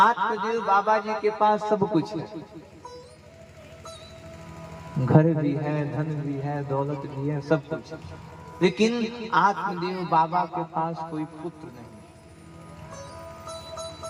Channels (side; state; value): both; identical; correlation 1.00